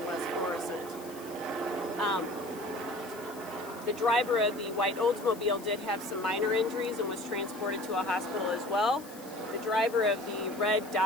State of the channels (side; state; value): left; noise; hiss, 18 dB below the sound